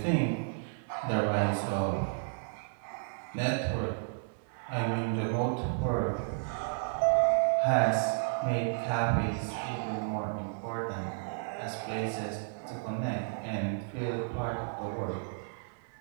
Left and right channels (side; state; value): left; silent; 56 dB below the other